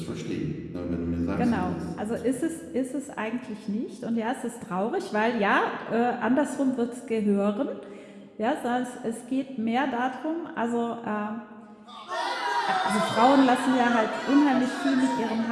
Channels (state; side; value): identical; both; correlation 1.00